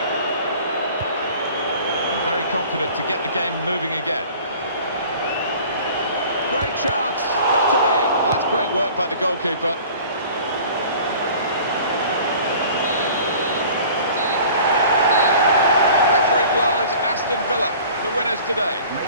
And very confident to get the game moving again. Great chance. Got to be. Well, that's great work by the goalkeeper. Referee blows Aston Villa, the winners today.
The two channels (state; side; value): inverted; both; correlation -0.46